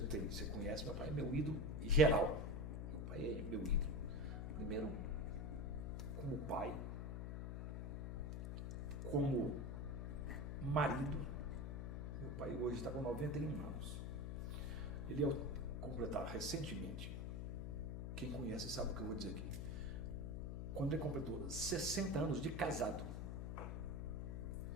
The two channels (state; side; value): noise; left; hum, 3 dB below the sound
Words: Você conhece, meu pai é meu ídolo geral. Meu pai é meu ídolo. Primeiro, como pai, como marido. Meu pai hoje está com 91 anos. Ele é completar recentemente, quem conhece sabe o que eu vou dizer aqui, quando ele completou 60 anos de casado,